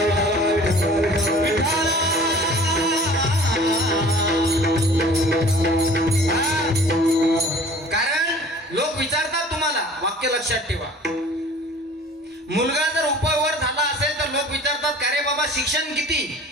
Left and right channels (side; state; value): both; normal; correlation 0.47